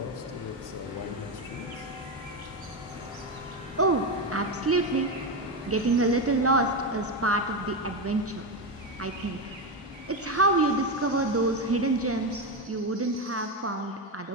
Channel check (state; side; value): normal; both; correlation 0.12